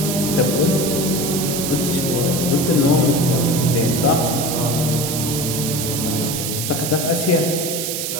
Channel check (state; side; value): noise; right; hiss, 3 dB below the sound